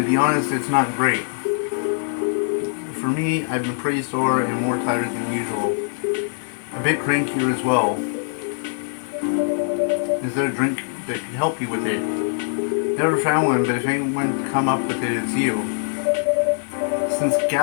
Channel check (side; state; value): right; silent; 64 dB below the other